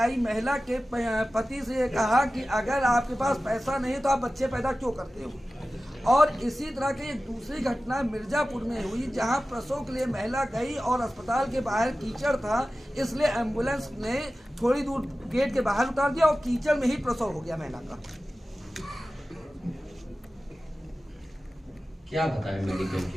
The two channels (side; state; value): both; normal; correlation 0.95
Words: महिला के पति से ये कहा कि अगर आपके पास पैसा नहीं तो आप बच्चे पैदा क्यों करते हो। और इसी तरह की एक दूसरी घटना मिर्जापुर में हुई जहां प्रसव के लिए महिला गई और अस्पताल के बाहर कीचड़ था, इसलिए एम्बुलेंस ने थोड़ी दूर गेट के बाहर उतार दिया और कीचड़ में ही प्रसव हो गया महिला का। क्या बताएं मेडिकल